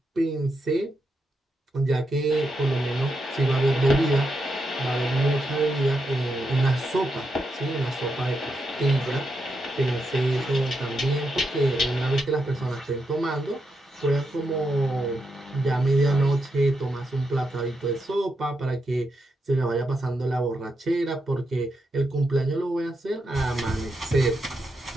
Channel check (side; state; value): both; normal; correlation 0.84